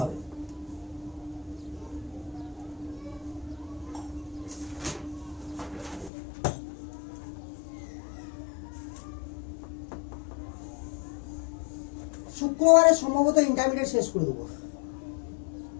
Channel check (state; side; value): drops out; right; at 6.1 s